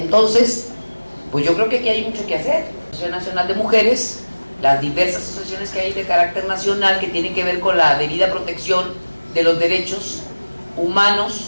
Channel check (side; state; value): both; inverted; correlation -1.00